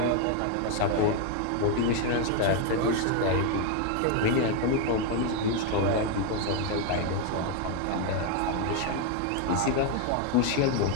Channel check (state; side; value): different; both; correlation 0.01